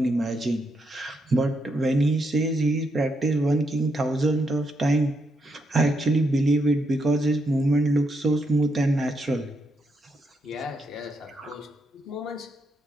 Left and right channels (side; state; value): both; normal; correlation 0.80